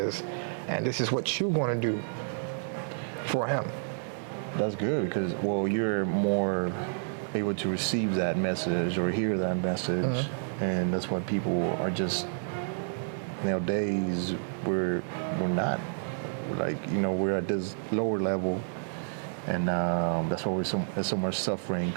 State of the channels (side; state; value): left; silent; digital silence